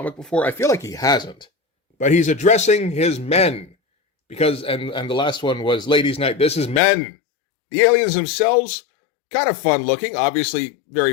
before. I feel like he hasn't. But he's addressing his men. Because, and the last one was Ladies' Night. This is men. The aliens themselves, kind of fun looking. Obviously,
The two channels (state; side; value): drops out; right; at 6.8 s